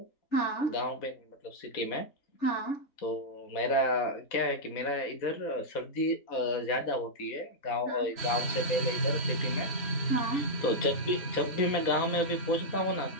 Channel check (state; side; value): late; right; 4.1 ms